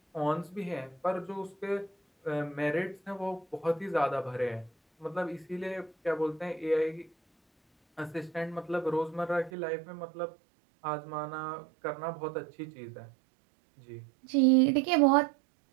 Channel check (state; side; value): drops out; left; at 9.5 s